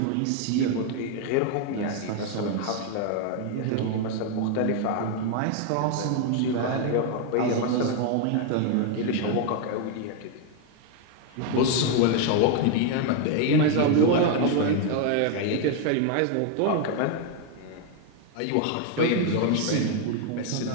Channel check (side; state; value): both; different; correlation 0.00